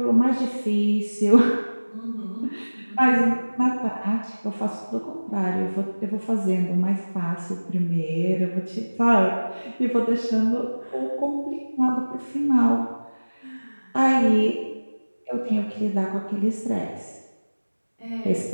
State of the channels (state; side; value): inverted; both; correlation -1.00